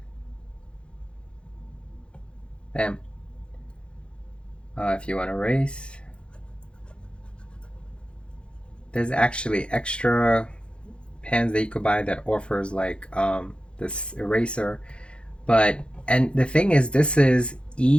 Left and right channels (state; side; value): late; right; 0.057 ms